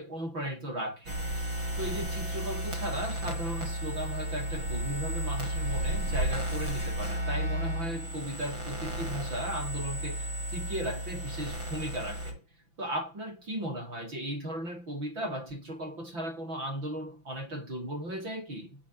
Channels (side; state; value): left; late; 5.9 ms